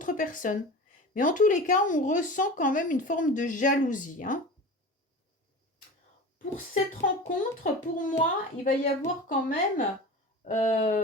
personnes. Mais en tous les cas, on ressent quand même une forme de jalousie. Hein. Pour cette rencontre, pour moi, il va y avoir quand même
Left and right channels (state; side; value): normal; both; correlation 0.33